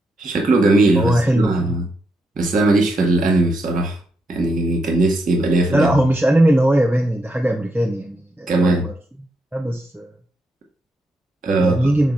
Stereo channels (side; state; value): both; normal; correlation 0.81